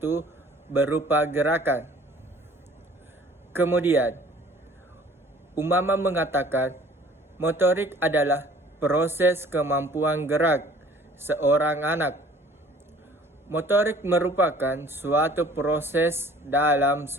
berupa gerakan. Kemudian, Umama mengatakan motorik adalah proses kemampuan gerak seorang anak. Motorik merupakan suatu proses dalam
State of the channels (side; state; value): both; normal; correlation 0.52